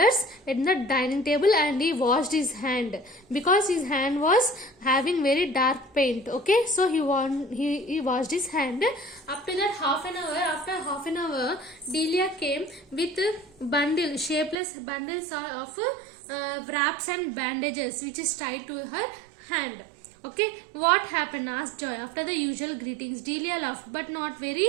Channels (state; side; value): drops out; left; at 14.6 s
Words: at the dining table and he washed his hand because his hand was having very dark paint. Okay, so he washed his hand. After that, after half an hour, Delia came with shapeless bundles of wraps and bandages which is tied to her hand. Okay, what happened? Asked Joy. After the usual greetings, Delia laughed, but not very